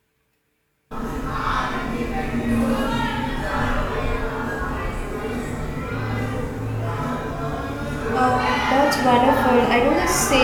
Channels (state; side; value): identical; both; correlation 1.00